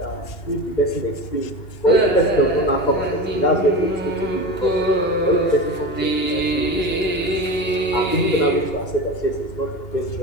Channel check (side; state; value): right; late; 2.8 ms